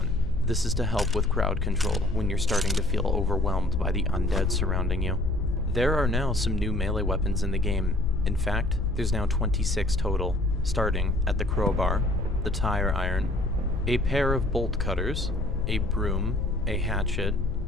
This is to help with crowd control when you're starting to feel overwhelmed by the undead surrounding you. There are now some new melee weapons in the game. In fact, there's now 26 total, starting at the crowbar, the tire iron, a pair of bolt cutters, a broom, a hatchet,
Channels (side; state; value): left; noise; rumble, 4 dB below the sound